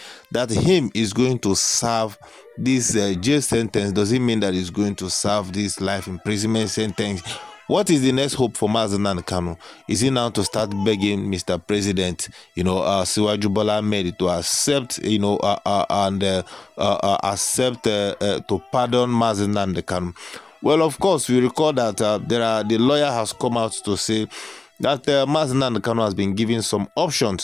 that him is going to serve this jail sentence? Does it mean that he's going to serve this life imprisonment sentence? What is the next hope for Mazi Nnamdi Kanu? Is he now to start begging Mr. President, Siwaju Bola Ahmed to accept, accept to pardon Mazi Nnamdi Kanu? Well, of course, we recall that the lawyer has come out to say that Mazi Nnamdi Kanu has been given some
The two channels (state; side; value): quieter; right; 3.4 dB